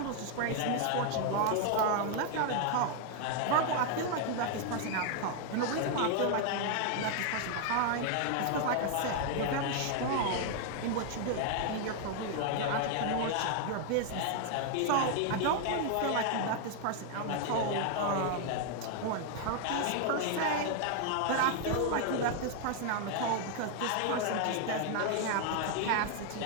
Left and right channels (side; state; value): both; different; correlation 0.00